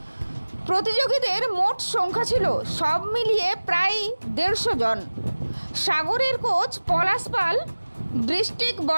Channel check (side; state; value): both; inverted; correlation -1.00